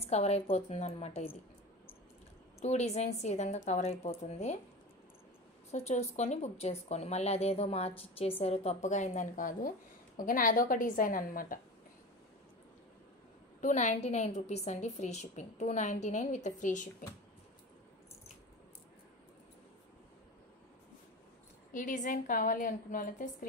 కవర్ అయిపోతుంది అనమాట. ఇది 2 డిజైన్స్ ఈ విధంగా కవర్ అయిపోతుంది. సో చూసుకొని బుక్ చేసుకోండి. మళ్ళీ అదేదో మార్చి ఇచ్చేసారు తప్పుగా అయిందని కాదు, ఓకేనా, అదొక డిజైన్ అనమాట. 299 రూపీస్ అండి free shipping. 299 with free shipping. ఈ డిజైన్ కావాలి అనుకున్న వాళ్ళైతే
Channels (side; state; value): both; normal; correlation 0.30